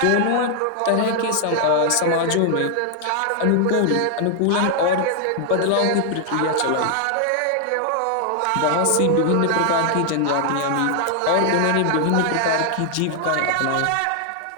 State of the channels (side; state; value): both; different; correlation 0.00